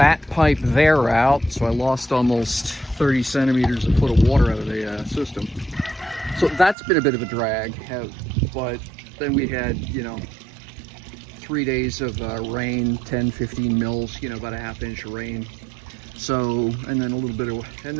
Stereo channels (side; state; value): left; drops out; at 6.8 s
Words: pipe there out, so I lost almost 30 centimeters a foot of water out of the system. So that's been a bit of a drag. But then we had, 3 days of rain, 10-15 mils, about a half inch of rain. So, and then a little bit of, and